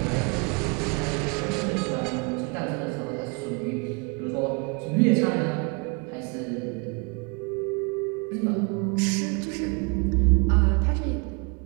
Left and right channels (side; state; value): left; quieter; 33.0 dB